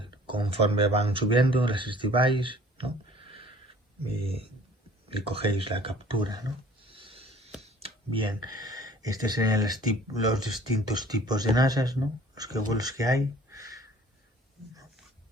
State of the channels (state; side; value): normal; both; correlation 0.51